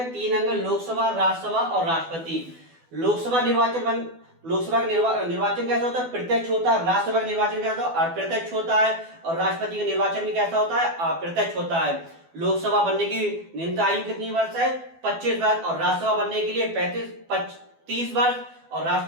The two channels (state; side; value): late; left; 12 ms